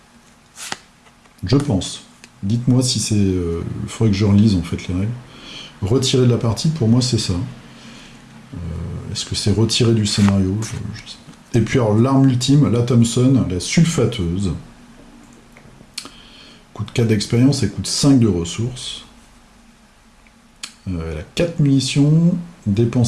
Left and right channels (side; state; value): both; identical; correlation 1.00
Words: Je pense. Dites-moi si c'est... il faudrait que je relise en fait les règles. Retirer de la partie, pour moi c'est ça. Est-ce que c'est retirer du scénario? Je sais pas. Et puis alors l'arme ultime, la Thompson, la sulfateuse. Coûte 4 d'expérience et coûte 5 de ressources. Elle a 4 munitions,